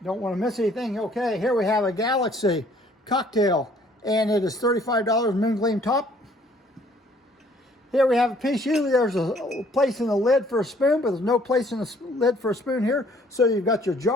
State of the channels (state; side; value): normal; both; correlation 0.60